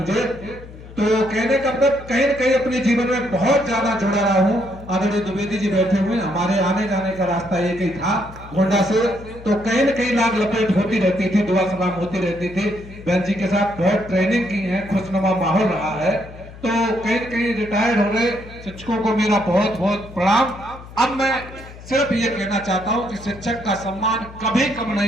तो कहने का मतलब कहीं न कहीं अपने जीवन में बहुत ज्यादा जुड़ा रहा हूँ। आदरणीय द्विवेदी जी बैठे हुए, हमारे आने जाने का रास्ता एक ही था गोंडा से, तो कहीं न कहीं लाग लपेट होती रहती थी, दुआ सलाम होती रहती थी। बहन जी के साथ बहुत ट्रेनिंग की है, खुशनुमा माहौल रहा है। तो कहीं न कहीं रिटायर्ड हो रहे शिक्षकों को मेरा बहुत बहुत प्रणाम। अब मैं सिर्फ ये कहना चाहता हूं कि शिक्षक का सम्मान कभी कम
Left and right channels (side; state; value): left; noise; hum, 17 dB below the sound